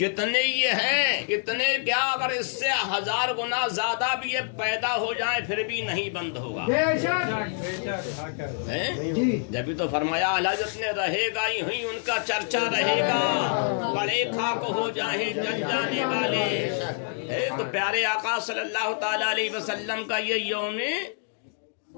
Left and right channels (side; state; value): right; silent; 60 dB below the other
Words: یہ ہیں اتنے کیا، اگر اس سے 1000 گنا زیادہ بھی یہ پیدا ہو جائیں پھر بھی نہیں بند ہوگا. جبھی تو فرمایا حضرت نے رہے گا ہی ان کا چرچا رہے گا، بڑے خاک ہو جائیں جل جانے والے. تو پیارے آقا صلی اللہ تعالی علیہ وسلم کا یہ یوم